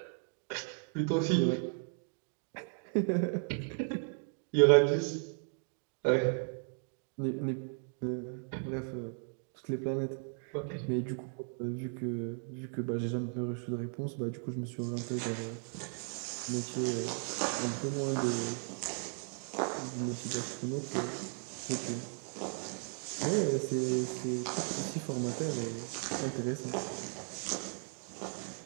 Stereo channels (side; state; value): left; silent; 54 dB below the other